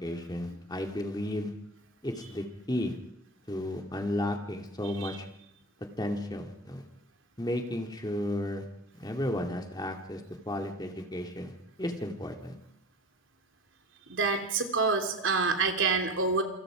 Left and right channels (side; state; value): both; normal; correlation 0.35